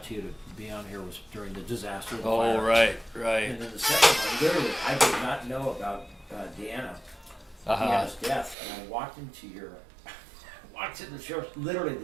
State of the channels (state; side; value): drops out; left; at 8.6 s